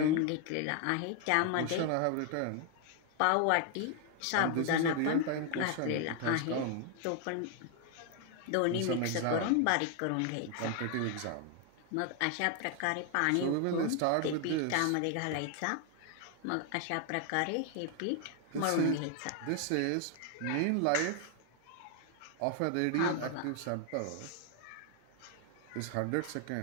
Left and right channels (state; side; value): different; both; correlation 0.01